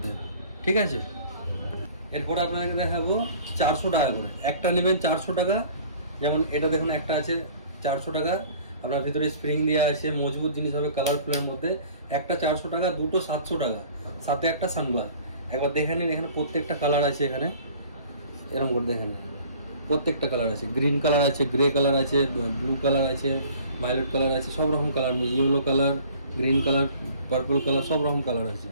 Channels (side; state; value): both; inverted; correlation -0.49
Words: ঠিক আছে। এরপর আপনাকে দেখাবো 400 টাকা করে। একটা নেবেন 400 টাকা, যেমন এটা দেখুন একটা আছে 400 টাকা, আপনার ভিতরে স্প্রিং দেওয়া আছে, মজবুত জিনিস হবে কালারফুলের মধ্যে। একটা 400 টাকা, দুটো 700 টাকা, সাথে একটা সানগ্লাস। একবার দেখে নিন, এখানে প্রত্যেকটা কালার আছে। এখানে এরকম করে দেখে নিন, প্রত্যেকটা কালার আছে। গ্রিন কালার আছে, গ্রে কালার আছে, ব্লু কালার আছে, ভায়োলেট কালার আছে, সব রকম colour, yellow colour, green colour, purple colour, সব রকম কালার আছে।